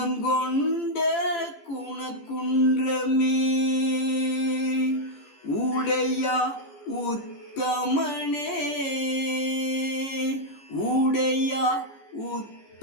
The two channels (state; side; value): late; right; 15 ms